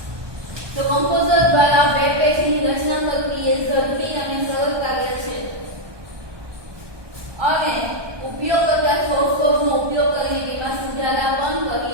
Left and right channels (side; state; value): left; late; 1.2 ms